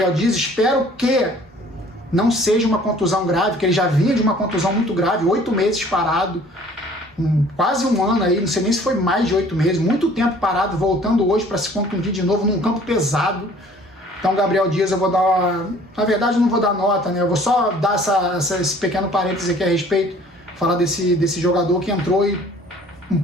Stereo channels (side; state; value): both; normal; correlation 0.53